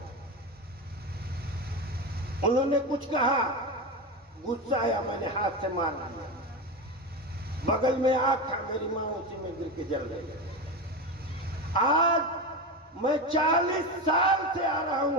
उन्होंने कुछ कहा, गुस्सा आया, मैंने हाथ से मार दिया, बगल में आग था, मेरी माँ उसी में गिर के जल गई। आज मैं 40 साल से आ रहा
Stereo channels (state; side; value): normal; both; correlation 0.19